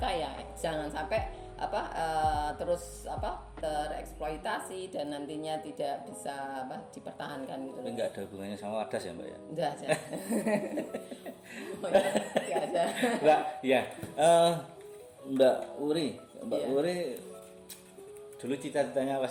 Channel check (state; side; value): identical; both; correlation 1.00